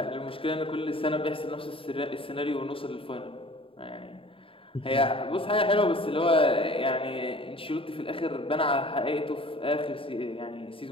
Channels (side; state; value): right; late; 0.26 ms